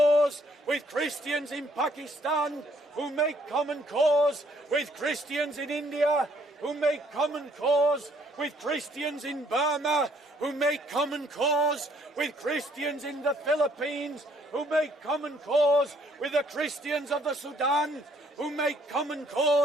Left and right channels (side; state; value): both; normal; correlation 0.65